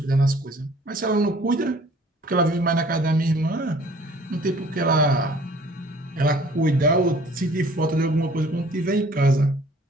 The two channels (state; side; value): normal; both; correlation 0.54